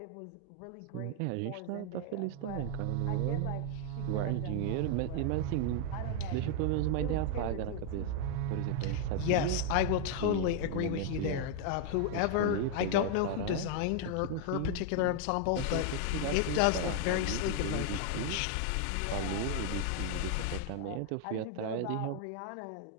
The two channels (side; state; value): both; different; correlation 0.00